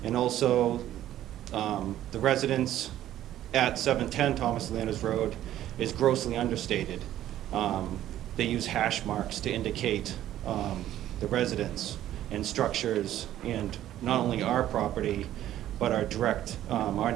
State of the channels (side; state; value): left; quieter; 12.7 dB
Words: And also, the residence at 710 Thomas Landers Road is grossly understated. They use hash marks to indicate the residence and structures, and not only our property, but our